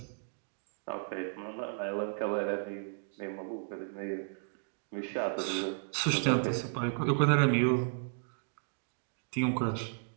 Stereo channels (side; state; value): left; silent; digital silence